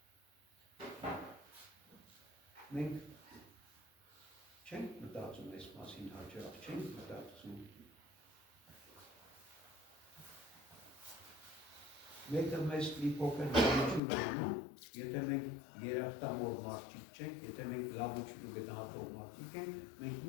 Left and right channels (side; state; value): right; drops out; at 14.0 s